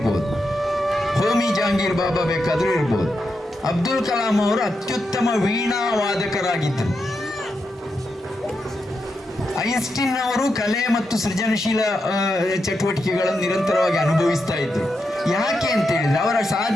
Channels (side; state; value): both; normal; correlation 0.85